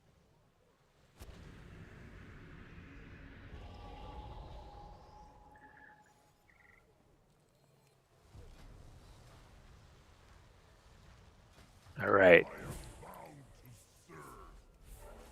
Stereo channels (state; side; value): identical; both; correlation 1.00